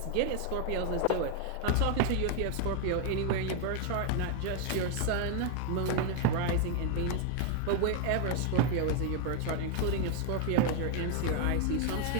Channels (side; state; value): both; different; correlation 0.00